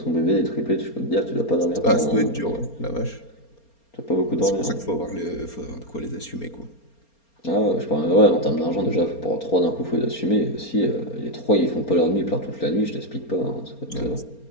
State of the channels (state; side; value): late; right; 4.3 ms